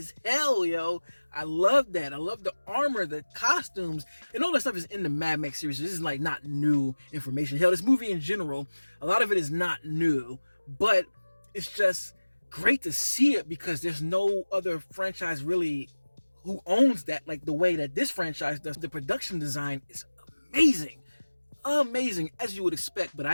hell, yo. I love that. I love the armor, the costumes, and all that stuff is in the Mad Max series. This is like not new information. Hell, this movie in general, a lot of it is not new, but it's just great to see it because there's no other franchise really who owns that like the way that this franchise does. The production design is amazing. Amazing, as you would expect, but I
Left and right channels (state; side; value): inverted; both; correlation -1.00